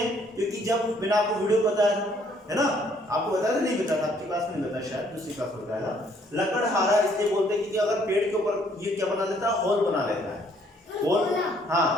क्योंकि जब मैंने आपको वीडियो बताया है ना, आपको बताया था नहीं बताया, आपकी क्लास में नहीं बताया, शायद दूसरी क्लास में बताया था। लकड़हारा इसलिए बोलते हैं क्योंकि अगर पेड़ के ऊपर ये क्या बना देता है? होल बना लेता है, होल, हाँ,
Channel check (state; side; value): normal; both; correlation 0.64